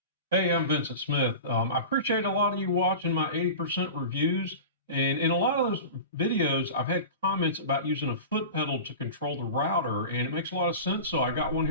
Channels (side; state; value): both; inverted; correlation -0.32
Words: Hey, I'm Vincent Smith. I appreciate a lot of you watching my 80% reviews. And in a lot of those videos, I've had comments about using a foot pedal to control the router, and it makes a lot of sense. So I got one